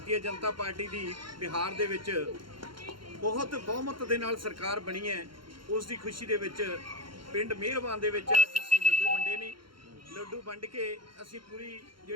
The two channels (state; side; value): late; left; 0.73 ms